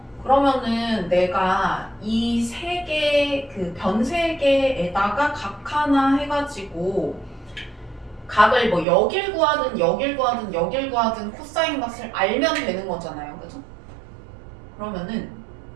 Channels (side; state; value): left; drops out; at 8.8 s